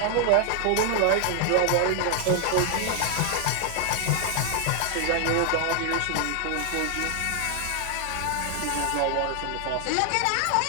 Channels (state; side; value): different; both; correlation 0.00